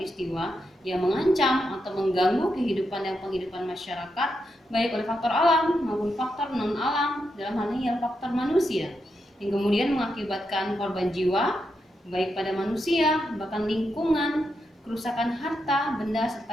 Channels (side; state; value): both; normal; correlation 0.84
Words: yang mengancam atau mengganggu kehidupan dan penghidupan masyarakat baik oleh faktor alam maupun faktor non alam, dalam hal ini adalah faktor manusia, yang kemudian mengakibatkan korban jiwa baik pada manusia, bahkan lingkungan, kerusakan harta, benda,